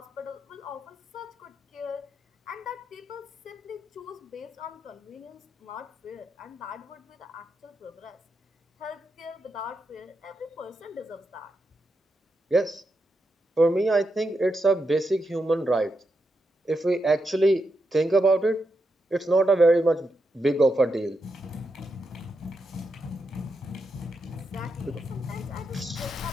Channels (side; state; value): both; normal; correlation 0.84